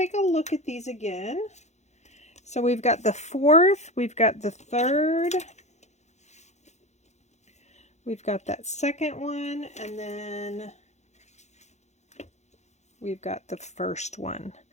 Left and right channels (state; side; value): late; right; 0.33 ms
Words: a look at these again. So we've got the 4th, we've got the 3rd, we've got that 2nd one, and then we've got the first one.